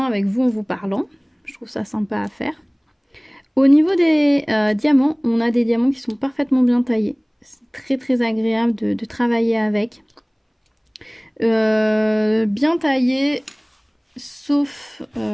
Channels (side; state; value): both; identical; correlation 1.00